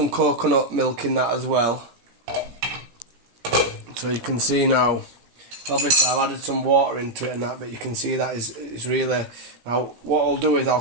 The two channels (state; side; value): late; left; 17 ms